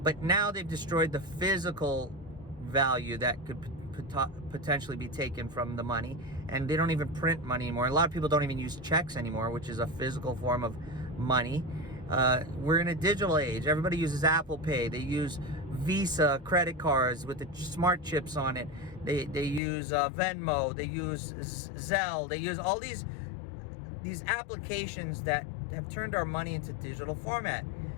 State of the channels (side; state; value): right; drops out; at 19.6 s